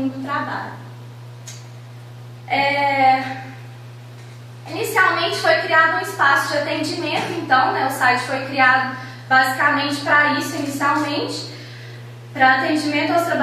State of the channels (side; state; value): both; identical; correlation 1.00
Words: do trabalho. Inicialmente foi criado um espaço de atendimento, então, né, o site foi criado basicamente para isso, inicialmente, para atendimento aos